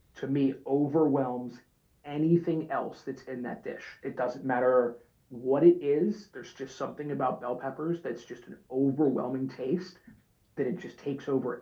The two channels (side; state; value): both; identical; correlation 1.00